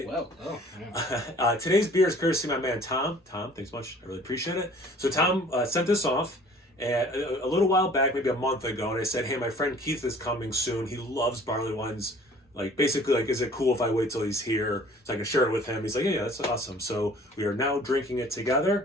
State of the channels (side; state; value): both; normal; correlation 0.51